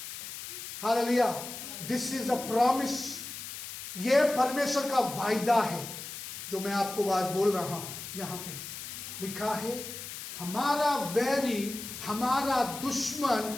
hallelujah. This is a promise, ये परमेश्वर का वायदा है जो मैं आपको बात बोल रहा हूं। यहां पे लिखा है हमारा वैरी, हमारा दुश्मन,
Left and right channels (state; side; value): noise; left; hiss, 9 dB below the sound